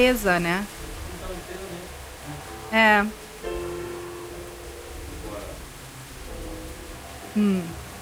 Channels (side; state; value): both; identical; correlation 1.00